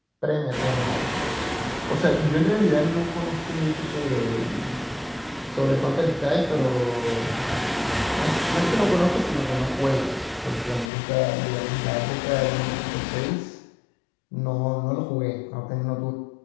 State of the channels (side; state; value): right; drops out; at 10.9 s